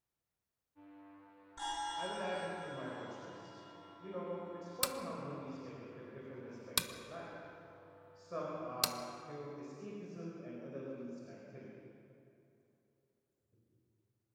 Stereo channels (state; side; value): identical; both; correlation 1.00